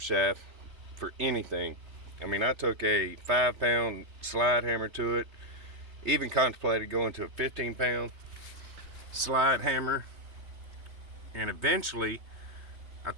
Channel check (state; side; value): late; left; 3.3 ms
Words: shaft for anything. I mean, I took a 5-pound slide hammer to it, even contemplated going to a 15-pound slide hammer, and eventually I